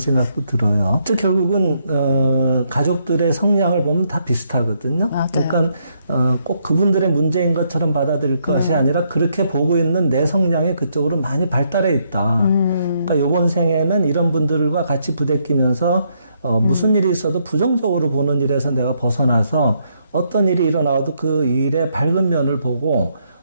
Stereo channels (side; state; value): both; inverted; correlation -0.75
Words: 들어요. 또 결국은 가족들의 성향을 보면 다 비슷하거든요. 맞아요. 그러니까 꼭 그분들의 문제인 것처럼 받아들일 것이 아니라 그렇게 보고 있는 내 성향이 그쪽으로 많이 발달해 있다. 그러니까 이번 생에는 이런 분들과 같이 부대끼면서 무슨 일이 있어도 부정적으로 보는 일에서 내가 벗어나서 어떤 일이 일어나도 그 일의 밝은 면을 보고